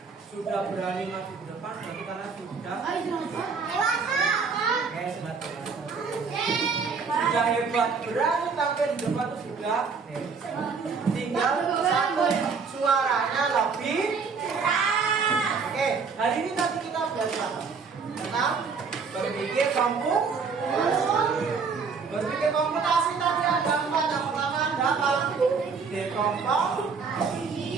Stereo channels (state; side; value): quieter; left; 5.3 dB